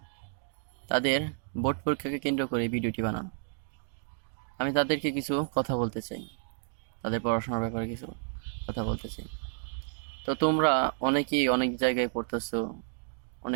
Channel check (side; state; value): left; silent; digital silence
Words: তাদের বোর্ড পরীক্ষাকে কেন্দ্র করে এই ভিডিওটি বানানো। আমি তাদেরকে কিছু কথা বলতে চাই, তাদের পড়াশোনার ব্যাপারে কিছু কথা বলতে চাই। তো তোমরা অনেকেই অনেক জায়গায় পড়তেছো,